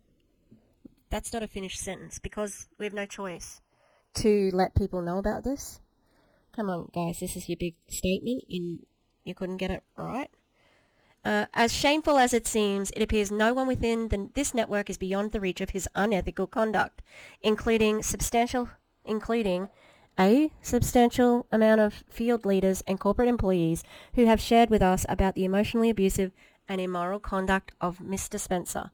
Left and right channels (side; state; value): both; identical; correlation 1.00